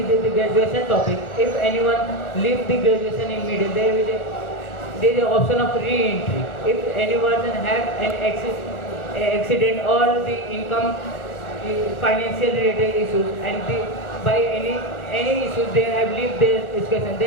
graduation topic. If anyone leaves the graduation in middle, there is an option of re-entry. If anyone have an accident or the income financial related issues, and by any issues they have lived their education,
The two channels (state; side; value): late; right; 1.3 ms